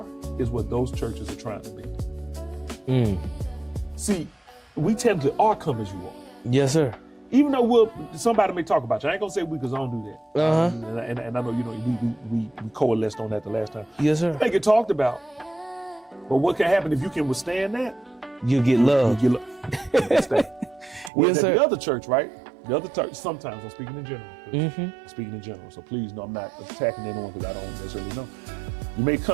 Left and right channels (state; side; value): drops out; left; at 21.1 s